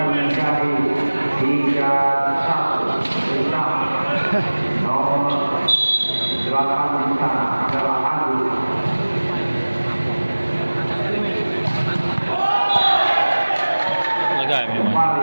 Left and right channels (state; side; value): inverted; both; correlation -1.00